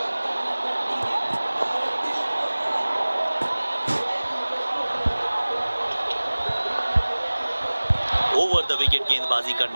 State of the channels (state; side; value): inverted; both; correlation -1.00